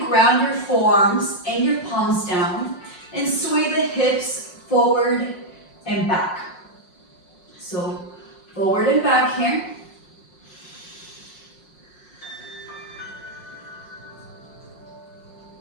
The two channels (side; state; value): right; late; 5.5 ms